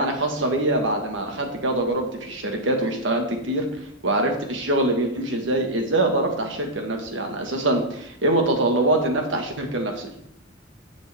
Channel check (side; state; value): both; normal; correlation -0.08